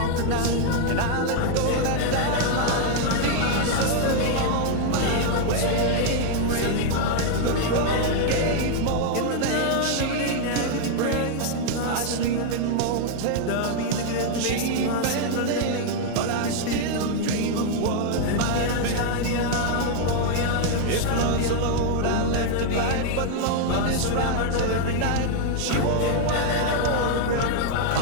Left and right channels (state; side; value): different; both; correlation 0.00